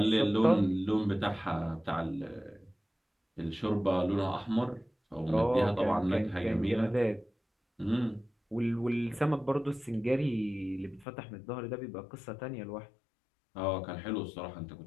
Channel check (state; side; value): drops out; right; at 11.1 s